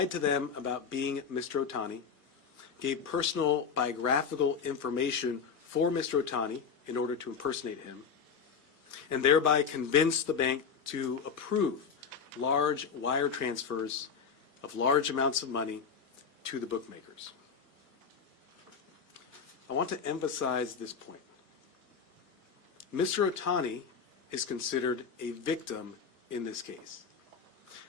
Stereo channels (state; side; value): quieter; right; 6.2 dB